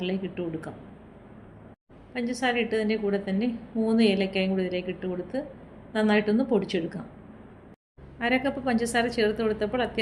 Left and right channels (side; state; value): both; identical; correlation 1.00